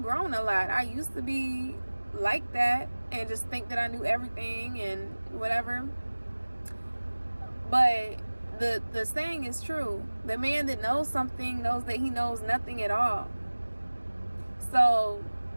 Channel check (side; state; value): both; inverted; correlation -1.00